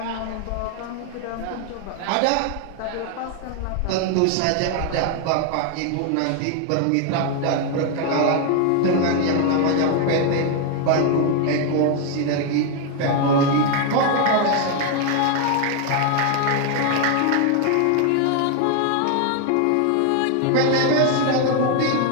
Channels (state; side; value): different; both; correlation 0.01